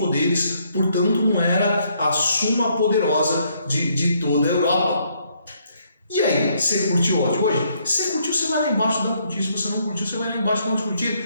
portanto não era a suma poderosa de toda a Europa. E aí, você curtiu o áudio hoje? Se você curtiu, você vai lá embaixo e dá um curtir. Se você não curtiu, você vai lá embaixo e dá um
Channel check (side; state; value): both; inverted; correlation -0.70